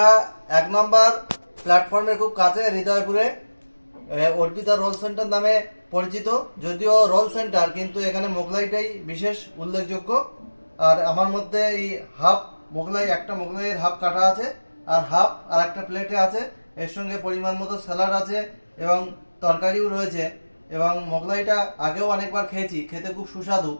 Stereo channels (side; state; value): both; inverted; correlation -1.00